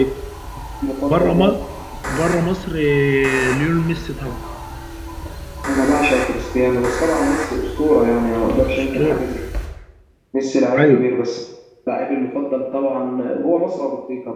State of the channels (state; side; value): identical; both; correlation 1.00